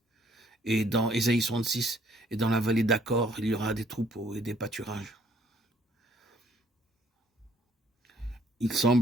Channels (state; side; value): normal; both; correlation 0.63